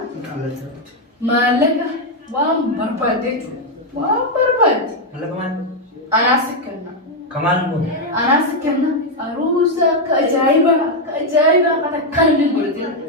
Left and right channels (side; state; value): both; normal; correlation 0.02